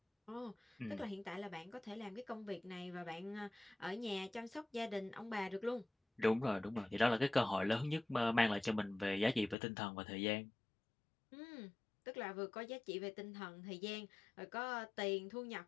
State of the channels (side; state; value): right; drops out; at 9.6 s